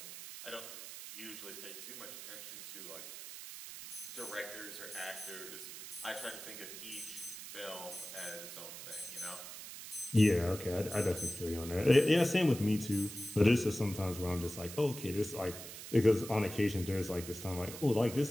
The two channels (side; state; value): right; noise; hiss, 11 dB below the sound